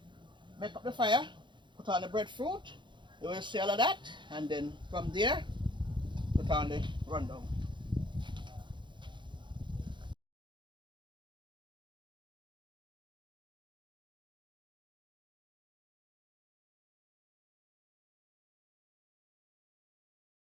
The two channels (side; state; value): left; late; 0.23 ms